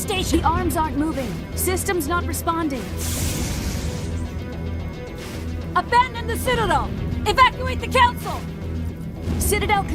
The arms aren't moving. System's not responding. Abandon the Citadel! Evacuate the Council! Citadel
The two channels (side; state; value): both; identical; correlation 1.00